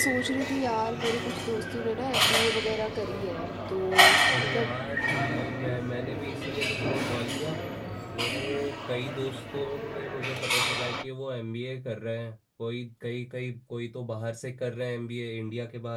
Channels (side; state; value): both; identical; correlation 1.00